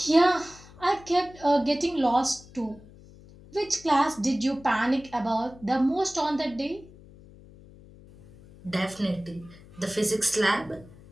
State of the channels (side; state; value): left; noise; hum, 22 dB below the sound